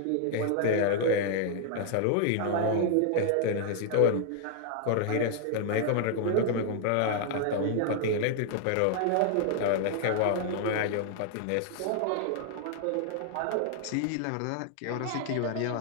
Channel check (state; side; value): different; both; correlation 0.00